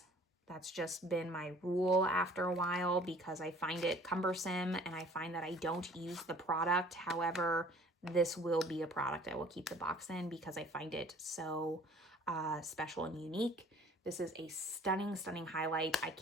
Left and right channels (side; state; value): both; normal; correlation 0.52